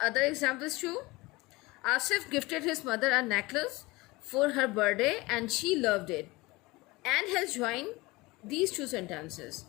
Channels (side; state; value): right; quieter; 22.1 dB